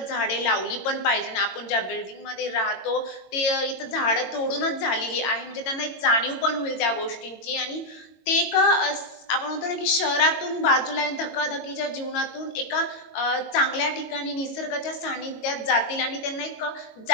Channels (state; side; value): late; right; 22 ms